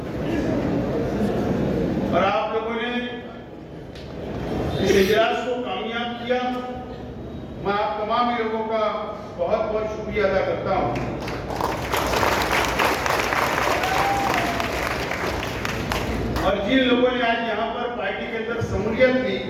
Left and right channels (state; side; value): identical; both; correlation 1.00